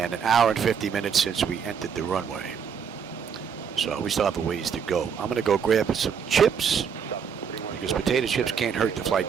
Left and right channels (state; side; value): quieter; left; 7.0 dB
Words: an hour and 50 minutes since we entered the runway. So we still have a ways to go. I'm going to go grab some chips, because potato chips can't hurt the flight